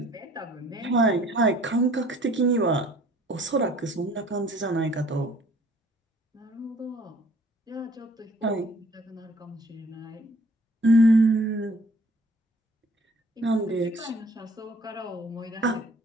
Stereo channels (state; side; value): normal; both; correlation 0.56